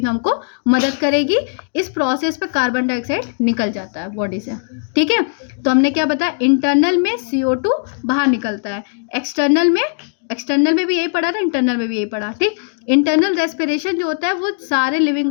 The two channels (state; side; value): silent; right; digital silence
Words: में हमको मदद करेगी। इस प्रोसेस पे कार्बन डाइऑक्साइड निकल जाता है बॉडी से। ठीक है, तो हमने क्या बताया, इंटरनल में CO2 बाहर निकलता है, एक्सटर्नल में भी यही पढ़ा था, इंटरनल में भी यही पढ़ा। ठीक, इंटरनल रेस्पिरेशन जो होता है वो सारे लिविंग